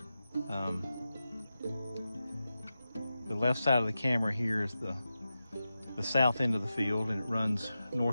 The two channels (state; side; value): inverted; both; correlation -0.92